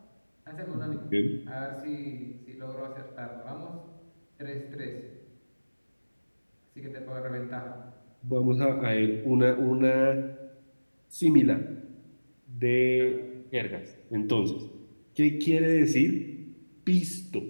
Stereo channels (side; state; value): both; inverted; correlation -1.00